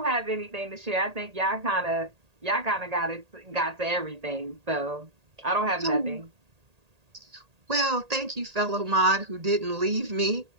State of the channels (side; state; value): left; late; 1.8 ms